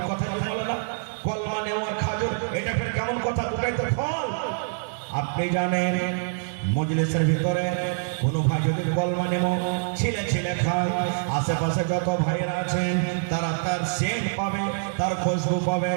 কথা বলে না, কলমা নেমু আর খাজর, এটা ফের কেমন কথা? দুটাই তো ফল। আপনি জানেন মজলিসের ভিতরে কোনো ভাই যদি কলমা নেমু ছিলে ছিলে খায়, আশেপাশে যত ভাইয়েরা আছেন তারা তার সেন্ট পাবে, তার খুশবু পাবে,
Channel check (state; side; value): silent; left; digital silence